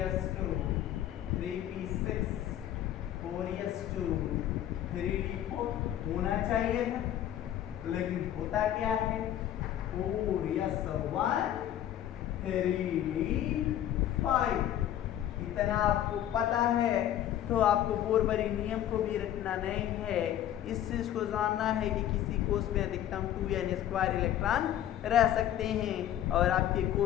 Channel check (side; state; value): right; quieter; 11.6 dB